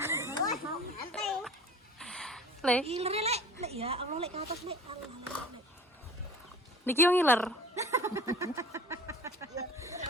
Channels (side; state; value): both; normal; correlation 0.43